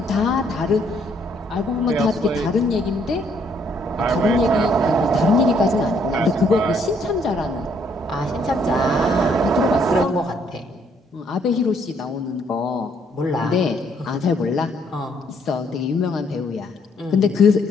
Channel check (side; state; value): both; normal; correlation 0.68